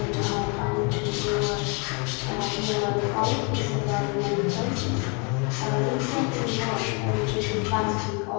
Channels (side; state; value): right; quieter; 32.0 dB